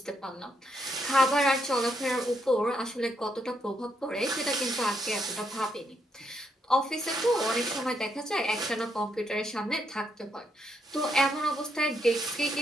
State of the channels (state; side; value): normal; both; correlation 0.77